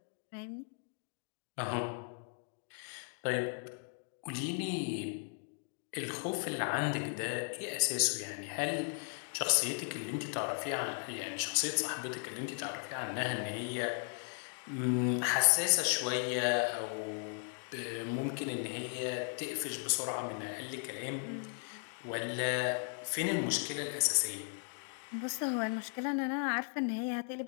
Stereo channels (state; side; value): silent; right; 53 dB below the other